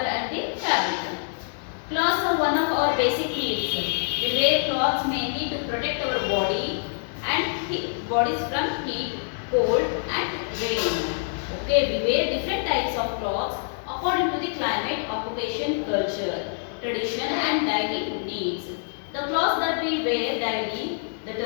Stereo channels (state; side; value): silent; right; digital silence